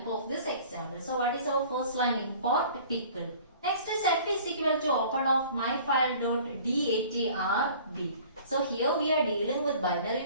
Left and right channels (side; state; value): both; inverted; correlation -0.48